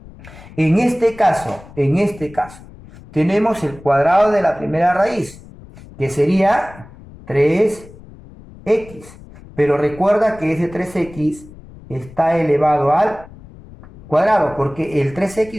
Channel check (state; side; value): noise; left; rumble, 20 dB below the sound